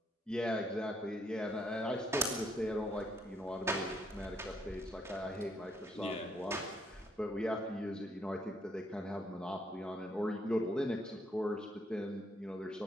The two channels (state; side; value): normal; both; correlation 0.71